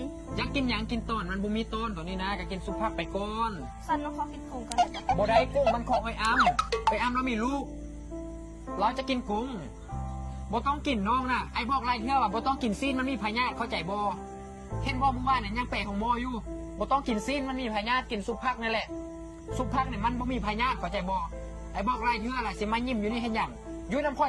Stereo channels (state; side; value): identical; both; correlation 1.00